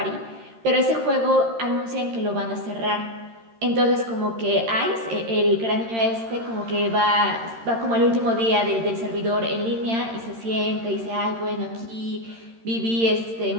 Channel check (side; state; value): left; late; 13 ms